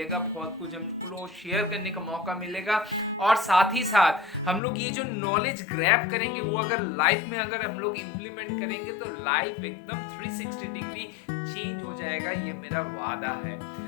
बहुत कुछ हमको शेयर करने का मौका मिलेगा और साथ ही साथ हम लोग ये जो नॉलेज ग्रैब करेंगे वो अगर लाइफ में अगर हम लोग इम्प्लीमेंट करेंगे तो लाइफ एकदम 360 डिग्री चेंज हो जाएगा, ये मेरा वादा है।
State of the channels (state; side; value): drops out; right; at 4.6 s